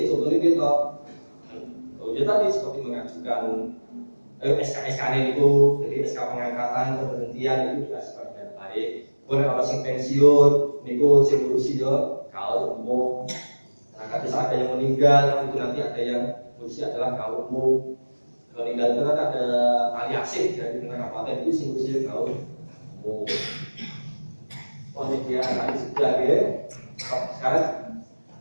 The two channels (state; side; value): inverted; both; correlation -1.00